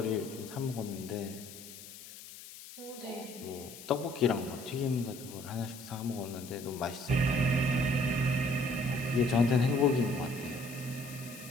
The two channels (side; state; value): left; noise; hiss, 15 dB below the sound